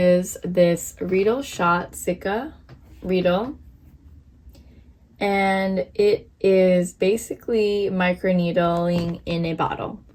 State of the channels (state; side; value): identical; both; correlation 1.00